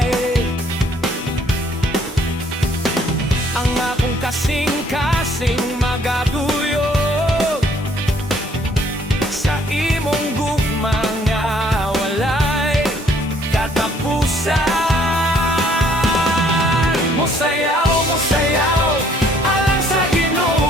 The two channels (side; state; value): both; normal; correlation 0.63